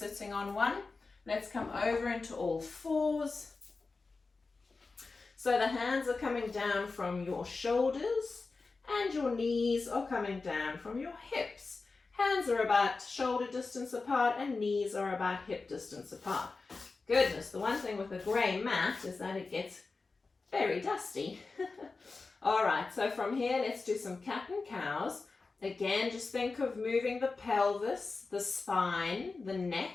on one. Let's come over into all fours. So the hands are coming down from your shoulders and your knees are coming down from your hips. Hands are about shoulder distance apart and knees are about hip distance apart. Goodness, the one thing with a grey mat is that it gets very dusty. All right, so from here, let's do some cat and cows. Again, just think of moving the pelvis, the spine, the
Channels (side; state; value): right; quieter; 4.0 dB